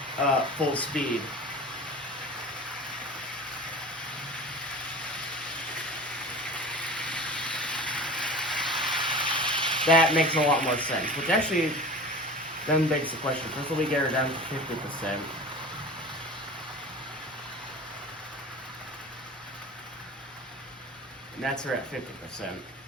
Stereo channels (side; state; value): both; normal; correlation 0.36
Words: full speed. That makes a lot more sense, which actually then begs the question. First, let me get her down to 50%. And that's her at 50%.